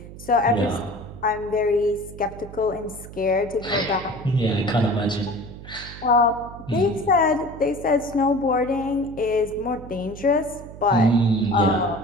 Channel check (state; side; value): noise; right; hum, 15 dB below the sound